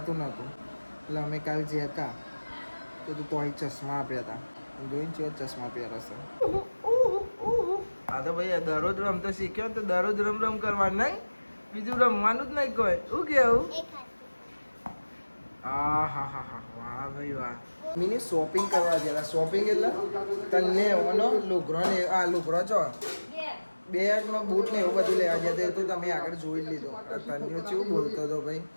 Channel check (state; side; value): inverted; both; correlation -1.00